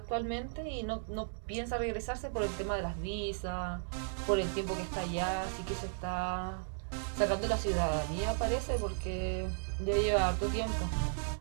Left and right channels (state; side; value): silent; left; digital silence